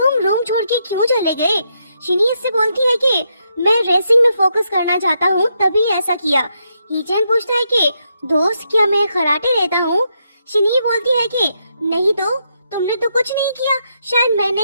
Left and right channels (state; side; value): inverted; both; correlation -0.80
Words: रूम छोड़ के क्यों चले गए। शिनी इससे बोलती है कि मैं रेसिंग में फोकस करना चाहता हूँ तभी ऐसा किया। ही चैन पूछता है कि दोस्त क्या मैं खराटे लेता हूँ। शिनी बोलती है कि नहीं तो तुमने तो कुछ नहीं किया, शायद मैंने